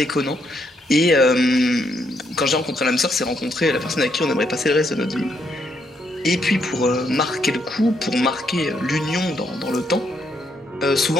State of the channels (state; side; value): normal; both; correlation 0.75